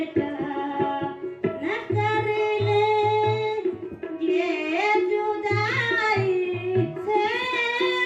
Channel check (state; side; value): identical; both; correlation 1.00